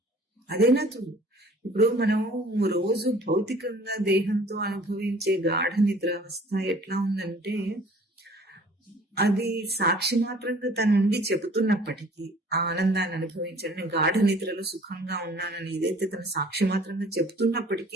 అదేనా చూడు. ఇప్పుడు మనము రోజు భౌతికంగా దేహంతో అనుభవించే గాఢ నిద్ర అవస్థ ఎట్లా ఉందంటే, అది సాక్షి మాత్రంగా తన నుండి చెబుతున్నప్పటికీ ఆ ఆనందాన్ని అనుభవించండి, గాఢ నిద్రలో సుఖంగా ఉన్నానని ఏదైతే తన సాక్షి మాత్రంగా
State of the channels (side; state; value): both; normal; correlation 0.51